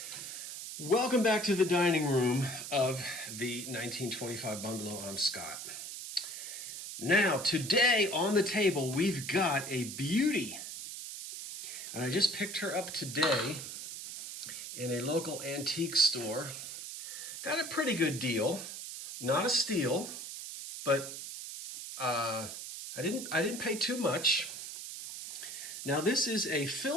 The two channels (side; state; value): right; noise; hiss, 8 dB below the sound